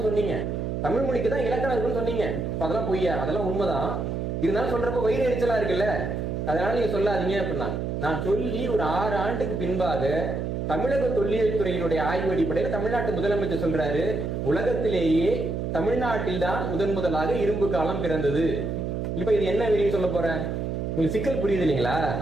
சொன்னீங்க. தமிழ் மொழிக்கு தான் இலக்கணம் இருக்குன்னு சொன்னீங்க. அதெல்லாம் பொய்யா? அதெல்லாம் உண்மைதான். இருந்தாலும் சொல்றப்ப வயிறு எரிச்சலா இருக்குல்ல, அதனால நீங்க சொல்லாதீங்க அப்படின்னா. நான் சொல்லி ஒரு 6 ஆண்டுக்கு பின்பாக தமிழக தொல்லியல் துறையினுடைய ஆய்வு அடிப்படையில் தமிழ்நாட்டு முதலமைச்சர் சொல்றாரு, உலகத்திலேயே தமிழ்நாட்டில் தான் முதலாக இரும்பு காலம் பிறந்தது. இப்ப இது என்ன வெளியே சொல்ல போறேன்? உங்களுக்கு சிக்கல் புரியுது இல்லைங்களா?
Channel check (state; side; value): noise; right; hum, 3 dB below the sound